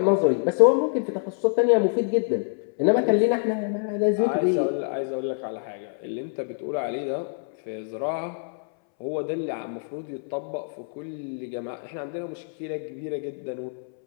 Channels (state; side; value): silent; right; 61 dB below the other